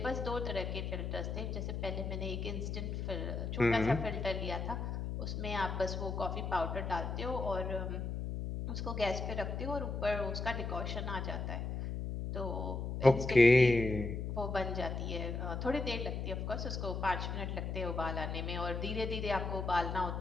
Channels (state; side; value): noise; left; hum, 3 dB below the sound